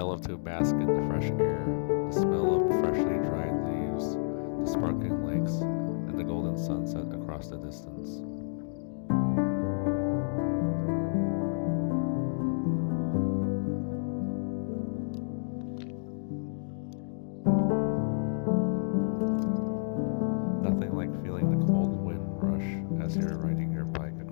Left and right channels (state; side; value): silent; right; digital silence